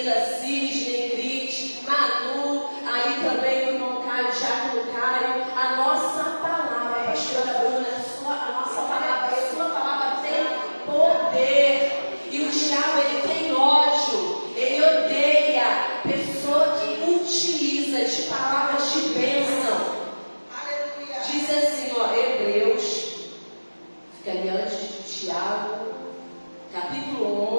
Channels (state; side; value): inverted; both; correlation -1.00